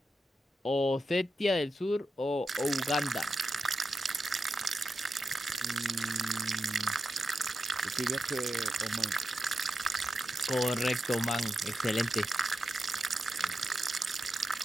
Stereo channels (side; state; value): both; normal; correlation 0.89